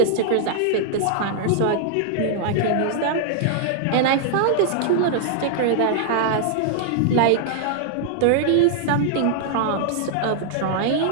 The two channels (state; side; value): different; both; correlation -0.01